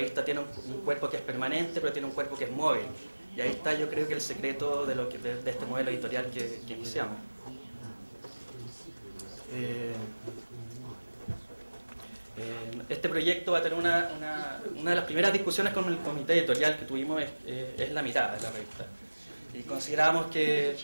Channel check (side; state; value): both; inverted; correlation -1.00